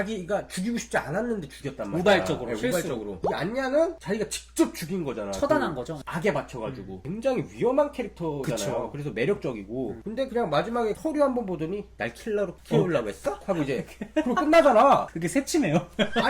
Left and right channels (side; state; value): both; identical; correlation 1.00